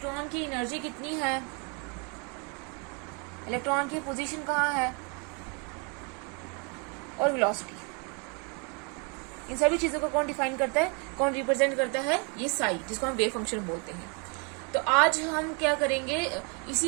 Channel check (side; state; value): left; quieter; 33.7 dB